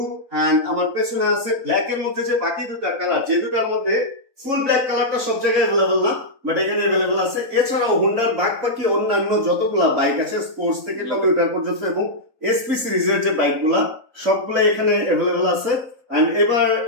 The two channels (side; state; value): left; late; 4.0 ms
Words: এন্ড আমার পেছনে আছে ব্ল্যাক এর মধ্যে যে বাকি দুটা কালার, যে দুটার মধ্যে ফুল ব্ল্যাক কালারটা সব জায়গায় অ্যাভেলেবল না, বাট এখানে অ্যাভেলেবল আছে। এছাড়াও হোন্ডার বাকি অন্যান্য যতগুলা বাইক আছে স্পোর্টস থেকে কম্পিউটার পর্যন্ত এবং এসপি সিরিজের যে বাইকগুলা সবগুলা এখানে অ্যাভেলেবল আছে। এন্ড এবার